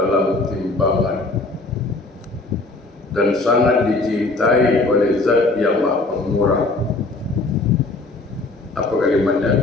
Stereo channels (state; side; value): quieter; right; 3.2 dB